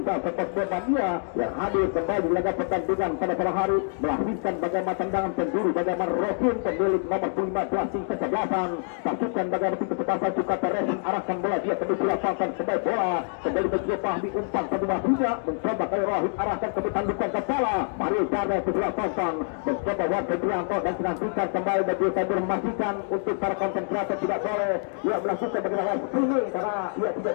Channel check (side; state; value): right; silent; 61 dB below the other